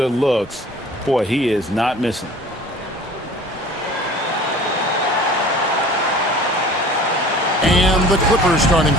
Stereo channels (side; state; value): both; normal; correlation 0.45